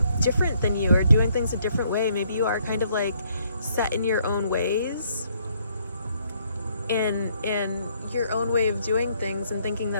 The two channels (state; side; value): inverted; both; correlation -0.68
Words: different than you or doing things a different way. Maybe you are kind of like set in your own ways and your own way of doing things, and thinking